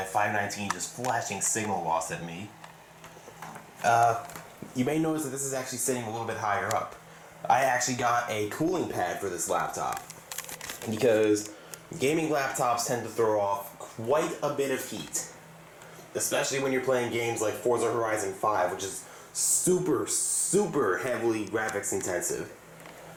519 just flashing signal loss at me, you may notice that this is actually sitting a little bit higher up. I actually got a cooling pad for this laptop, because gaming laptops tend to throw off quite a bit of heat, especially when you're playing games like Forza Horizon 5, which is super heavily graphics intensive.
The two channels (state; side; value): identical; both; correlation 1.00